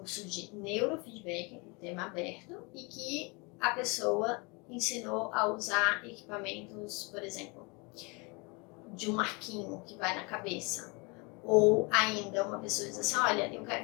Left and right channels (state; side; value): quieter; right; 29.6 dB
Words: de neurofeedback, um tema aberto, e que a pessoa ensinou a usar equipamentos, por exemplo, de um arquinho que vai na cabeça. Ou ainda uma pessoa diz assim, olha, eu